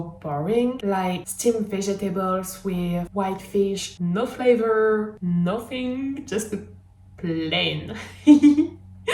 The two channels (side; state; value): both; identical; correlation 1.00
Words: boring, like steamed vegetables with white fish, no flavor, nothing, just plain.